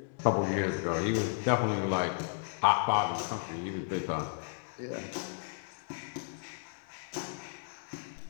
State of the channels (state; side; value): silent; right; digital silence